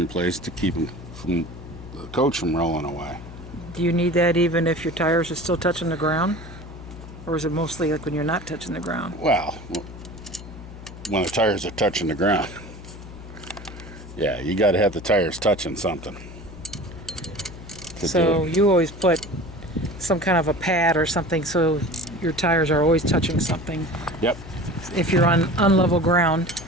place to keep them from the coach from rolling away. Do you need that even if your tires are still touching the ground? Or is it mostly like when you're not touching the ground? Well, when the tires are touching the ground. Yeah, you got to have the tires touching something. So you always put some kind of a pad or something so your tires are always touching something. Yep. If you're on unlevel ground.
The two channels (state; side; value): noise; left; hum, 14 dB below the sound